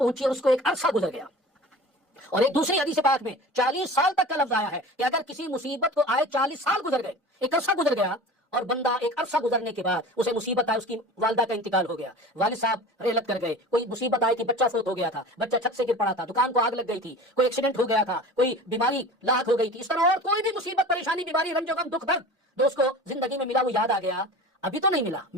اور اس کو ایک عرصہ گزر گیا، اور ایک دوسری حدیث پاک میں 40 سال تک کا لفظ آیا ہے کہ اگر کسی مصیبت کو آئے 40 سال گزر گئے، ایک عرصہ گزر گیا، اور بندہ ایک عرصہ گزرنے کے بعد اسے مصیبت آئی، اس کی والدہ کا انتقال ہو گیا، والد صاحب رحلت کر گئے، کوئی مصیبت آئی تھی، بچہ فوت ہو گیا تھا، بچہ چھت سے گر پڑا تھا، دکان کو آگ لگ گئی تھی، کوئی ایکسیڈنٹ ہو گیا تھا، کوئی بیماری لاحق ہو گئی تھی، اس طرح اور کوئی بھی مصیبت، پریشانی، بیماری، رنج و غم، دکھ درد جو اس کو زندگی میں ملا وہ یاد آ گیا، ابھی تو نہیں ملا،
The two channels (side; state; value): both; normal; correlation 0.37